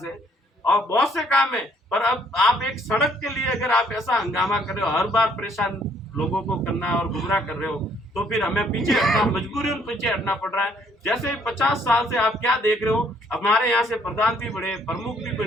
है और बहुत से काम है। पर अब आप एक सड़क के लिए अगर आप ऐसा हंगामा कर रहे हो, हर बार परेशान लोगों को करना और गुमराह कर रहे हो, तो फिर हमें पीछे हटना, मजबूरी पीछे हटना पड़ रहा है। जैसे 50 साल से आप क्या देख रहे हो, हमारे यहाँ से प्रधान भी बढ़े, प्रमुख भी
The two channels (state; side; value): normal; both; correlation 0.65